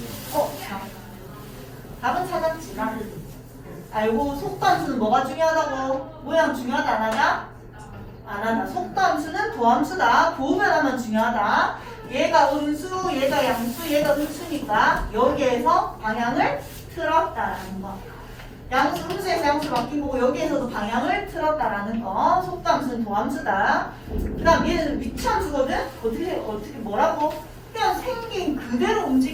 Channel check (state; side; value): identical; both; correlation 1.00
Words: 자. 답은 찾았지, 나. 알고 속도 함수는 뭐가 중요하다고? 모양 중요하다 안 하냐? 안 하다. 속도 함수는 도함수다. 도변하면 중요하다. 얘가 음수, 얘가 양수, 얘가 음수니까 여기에서 방향을 틀었다라는 거. 양수, 음수에서 양수 바뀐 거고 여기에서도 방향을 틀었다라는 거. 속도 함수는 도함수다. 그 다음 얘는 위치함수거든? 어떻게 뭐라고? 그냥 생긴 그대로